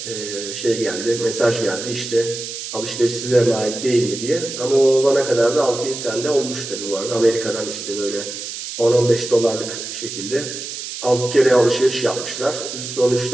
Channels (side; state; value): right; noise; hiss, 8 dB below the sound